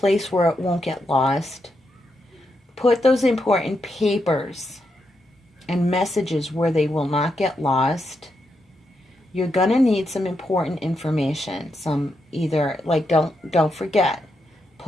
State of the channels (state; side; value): normal; both; correlation 0.83